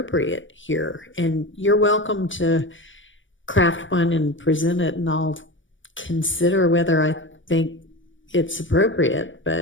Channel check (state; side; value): late; right; 0.56 ms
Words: here. And you're welcome to craft one and present it, and I'll consider whether I think it's appropriate.